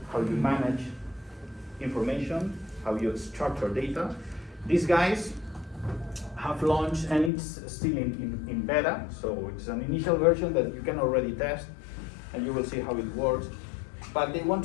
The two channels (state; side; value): drops out; right; at 7.3 s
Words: how you manage information, how you structure data. These guys have launched, and it's still in beta, so it's an initial version that you can already test, and you will see how it works. But they want